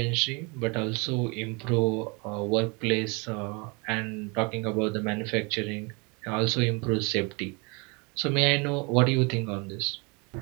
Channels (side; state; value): left; quieter; 30.1 dB